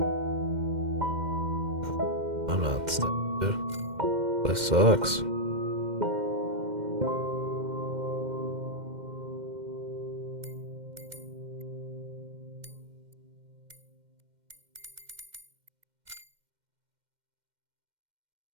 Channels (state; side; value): late; left; 2.1 ms